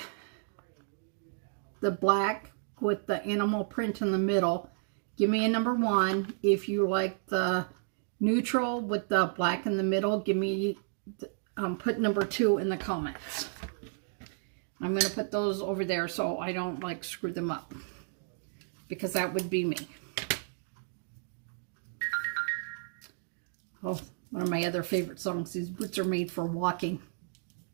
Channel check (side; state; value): left; silent; digital silence